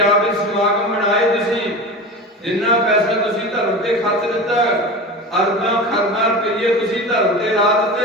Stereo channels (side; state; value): both; normal; correlation 0.30